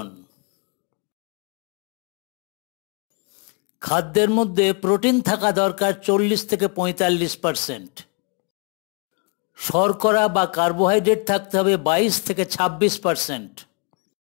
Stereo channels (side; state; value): right; quieter; 35.3 dB